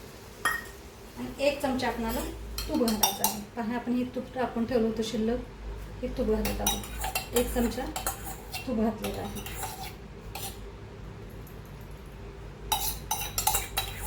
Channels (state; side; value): identical; both; correlation 1.00